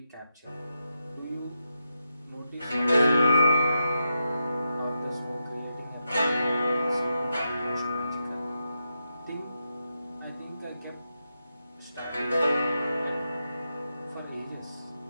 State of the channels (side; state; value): both; inverted; correlation -0.86